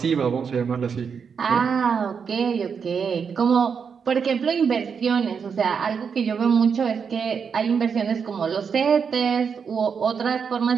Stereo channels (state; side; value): quieter; left; 6.4 dB